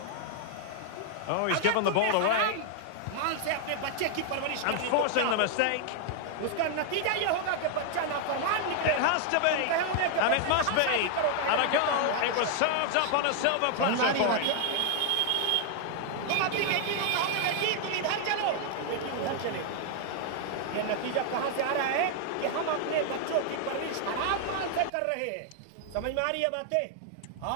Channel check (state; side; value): different; both; correlation 0.00